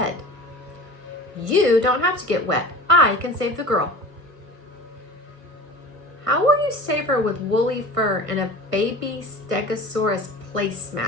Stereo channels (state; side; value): late; left; 1.5 ms